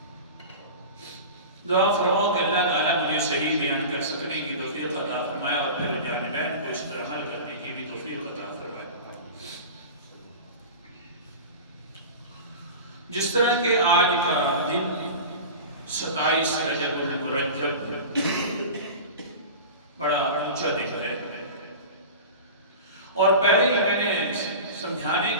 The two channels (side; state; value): both; inverted; correlation -0.32